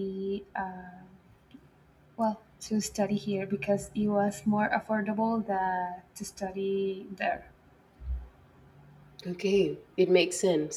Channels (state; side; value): identical; both; correlation 1.00